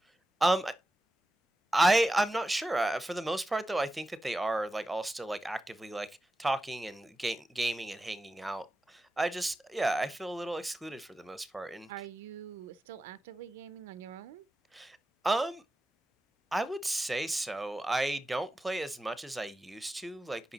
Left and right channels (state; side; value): normal; both; correlation 0.92